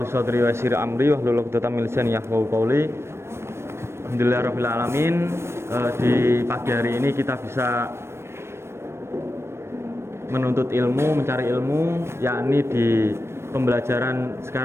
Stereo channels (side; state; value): left; late; 0.12 ms